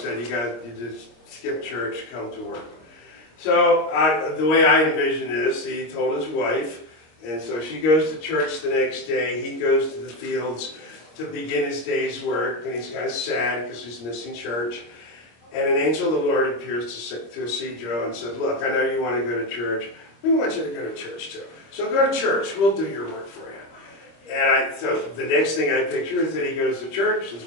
you just skip church, come to work. So the way I envision this, he told his wife, and so she goes to church the next day, he goes to the fields to begin his day's work, and he's kind of sad because he's missing church. And an angel of the Lord appears to Isidro and said, look, I know you want to go to church. We want you to go to church too. So go to church. We'll do your work for you. And so the next thing I picture is that he goes to church. His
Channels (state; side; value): late; right; 26 ms